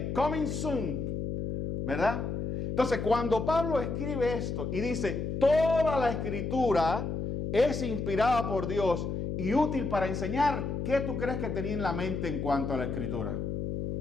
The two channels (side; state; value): left; noise; hum, 3 dB below the sound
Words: coming soon. ¿Verdad? Entonces, cuando Pablo escribe esto y dice, toda la escritura es inspirada por Dios y útil para enseñar, ¿qué tú crees que tenía en la mente en cuanto a la escritura?